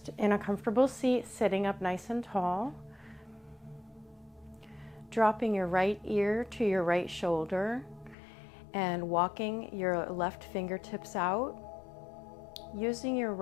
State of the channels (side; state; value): right; drops out; at 8.2 s